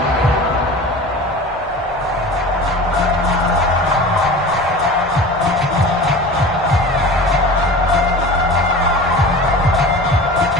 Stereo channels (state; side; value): noise; left; hum, 21 dB below the sound